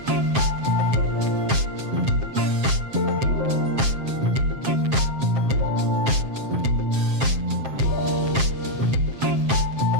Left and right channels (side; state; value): left; late; 7.5 ms